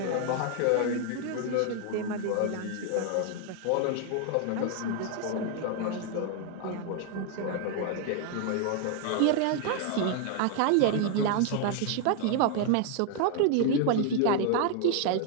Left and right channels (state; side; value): different; both; correlation 0.00